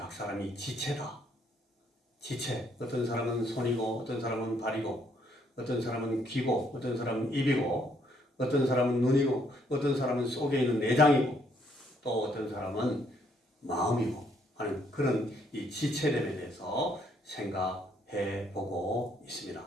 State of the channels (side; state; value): both; normal; correlation 0.69